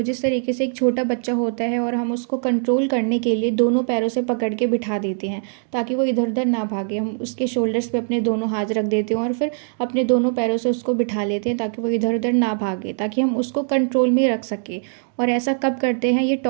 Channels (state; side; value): silent; left; 65 dB below the other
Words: जिस तरीके से एक छोटा बच्चा होता है और हम उसको कंट्रोल करने के लिए दोनों पैरों से पकड़ के बिठा देते हैं ताकि वो इधर उधर ना भागे। हम उसके शोल्डर्स पे अपने दोनों हाथ रख देते हैं और फिर अपने दोनों पैरों से उसको बिठा लेते हैं ताकि वो इधर उधर ना भागे, ताकि हम उसको कंट्रोल में रख सके। और ऐसा कब करते हैं? ये